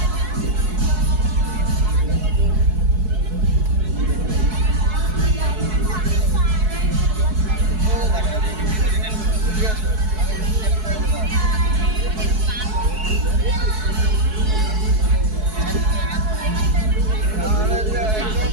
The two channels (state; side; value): late; left; 4.6 ms